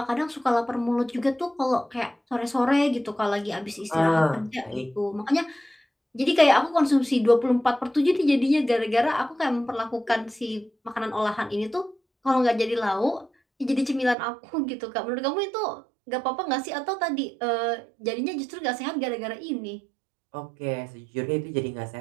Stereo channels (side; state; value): left; drops out; at 14.2 s